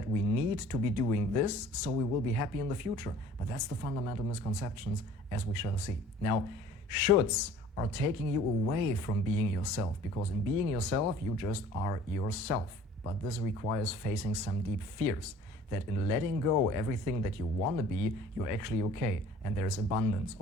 we need to be doing this so we will be happy in the future. But that's the fundamental misconceptions, as we shall see. Now, shoulds are taking you away from being yourself, because in being yourself, you just are yourself. But this requires facing some deep fears, that in letting go everything that you want to be, you're actually okay. And there's abundance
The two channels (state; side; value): normal; both; correlation 0.49